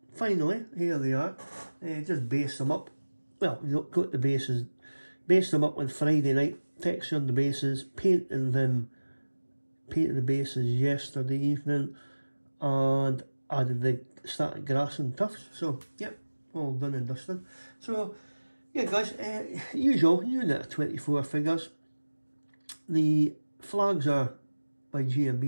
finally, here they are. Just base them up. Well, you don't got the bases. Based them up on Friday night, textured the bases, painted the bases yesterday evening, and added the static grass and tufts. So, yep, all done and dusted. So, yeah guys, usual unit of 24 figures. The flags are by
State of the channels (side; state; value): both; inverted; correlation -1.00